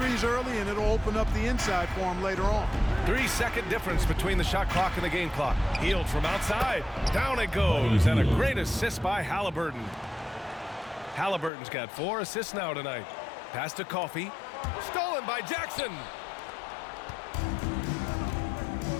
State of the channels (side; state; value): right; drops out; at 11.5 s